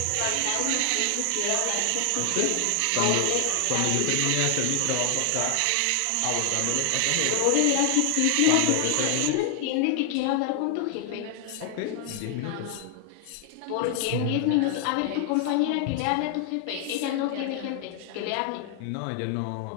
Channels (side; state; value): both; different; correlation 0.00